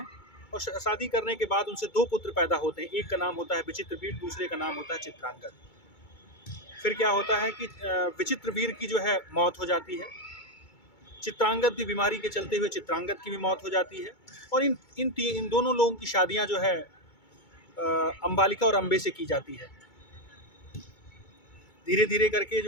और शादी करने के बाद उनसे 2 पुत्र पैदा होते हैं। एक का नाम होता है विचित्रवीर, दूसरे का नाम होता है चित्रांगद। फिर क्या होता है कि विचित्रवीर की जो है मौत हो जाती है, चित्रांगद भी बीमारी के चलते हुए चित्रांगद की भी मौत हो जाती है और इन दोनों लोगों की शादियां जो है अंबालिका और अंबे से की जाती है। धीरे धीरे करके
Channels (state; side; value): late; right; 2.2 ms